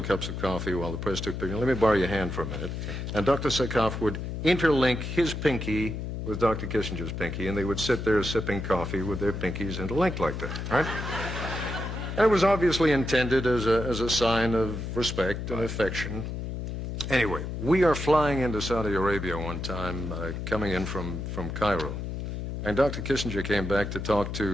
cups of coffee while the press took pictures. Let me borrow your hand for a minute. And Dr. Sakaf would interlink his pinky with Dr. Kissinger's pinky, and they would sit there sipping coffee with their pinkies interlinked like that, right? And it was obviously intended as a sign of respect and affection. Anyway, we are flying into Saudi Arabia one time, coming in from Cairo. And Dr. Kissinger came back to talk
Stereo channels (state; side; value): noise; left; hum, 5 dB below the sound